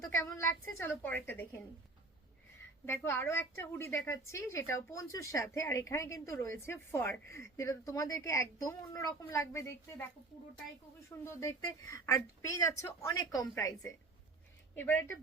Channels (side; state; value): left; quieter; 3.3 dB